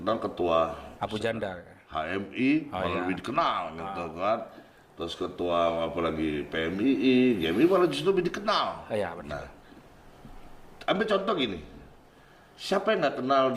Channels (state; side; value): identical; both; correlation 1.00